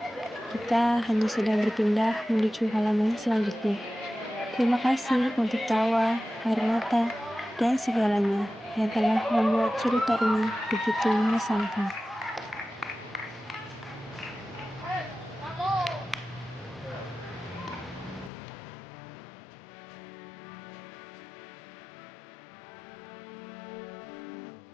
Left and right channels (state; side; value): drops out; right; at 18.3 s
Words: Kita hanya sedang berpindah menuju halaman selanjutnya. Terima kasih untuk tawa, air mata, dan segalanya yang telah membuat cerita ini begitu mengesankan.